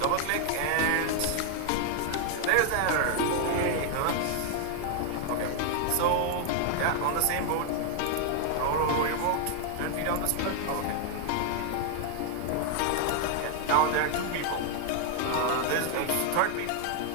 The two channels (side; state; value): both; different; correlation 0.00